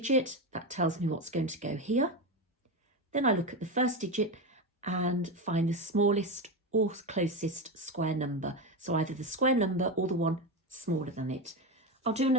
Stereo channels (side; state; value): both; normal; correlation 0.16